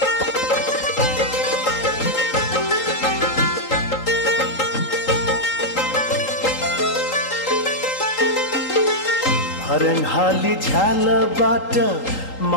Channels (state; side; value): late; right; 3.8 ms